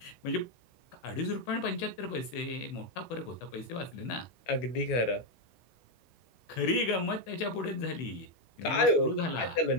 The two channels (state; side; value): late; right; 16 ms